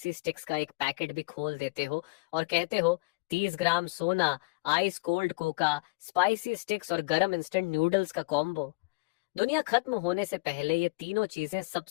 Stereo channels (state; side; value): quieter; right; 26.1 dB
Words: स्टिक्स का एक पैकेट भी खोल देते हो और कहते हो, 30 ग्राम सोना, ice cold Coca, spicy sticks और गरम इंस्टेंट नूडल्स का कॉम्बो। दुनिया खत्म होने से पहले ये तीनों चीजें